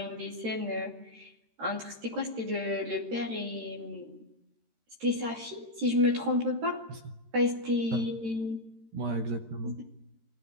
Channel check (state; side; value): late; left; 13 ms